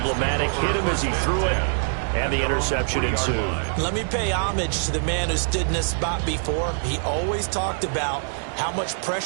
Hit him as he threw it, and the interception ensued. Let me pay homage to the man who stood in this spot before. He always talked about how much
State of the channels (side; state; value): left; silent; digital silence